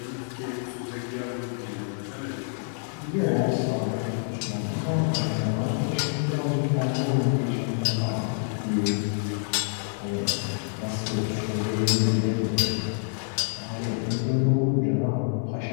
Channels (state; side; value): silent; right; digital silence